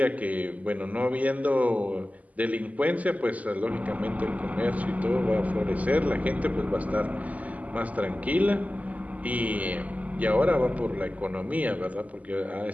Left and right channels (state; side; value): late; left; 0.074 ms